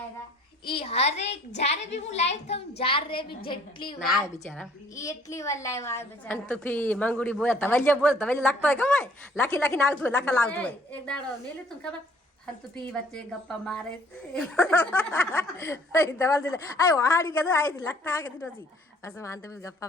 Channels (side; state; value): both; normal; correlation 0.58